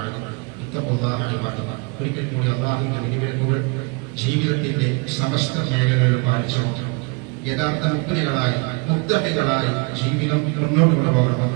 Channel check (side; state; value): left; quieter; 30.8 dB